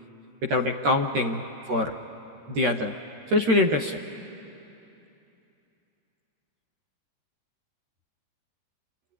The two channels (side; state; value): left; late; 13 ms